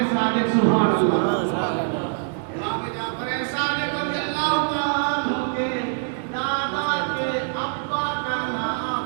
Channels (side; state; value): left; silent; 63 dB below the other